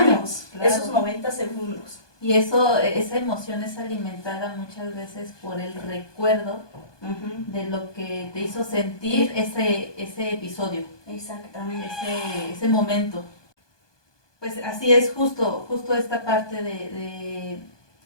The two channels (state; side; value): late; right; 1.2 ms